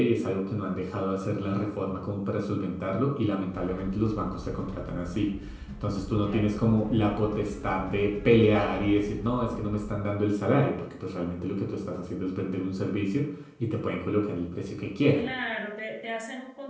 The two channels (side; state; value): both; identical; correlation 1.00